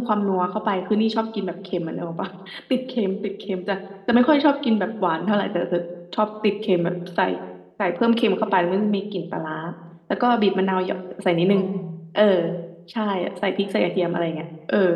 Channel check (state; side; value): identical; both; correlation 1.00